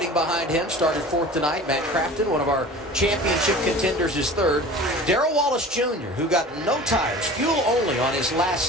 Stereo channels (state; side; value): normal; both; correlation 0.40